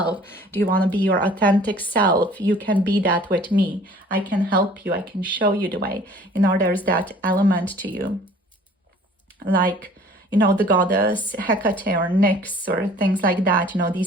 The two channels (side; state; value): both; normal; correlation 0.51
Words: Do you want to be your authentic self? You can be that with me. I can help you. I can show you the way. You know, there's that element to you. Like, you know, the goddess Hecate or Nyx or things like that. You know,